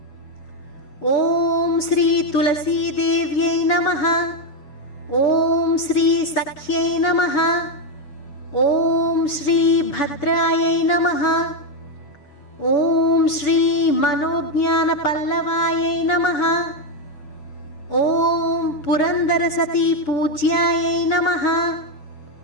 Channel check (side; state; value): right; late; 6.9 ms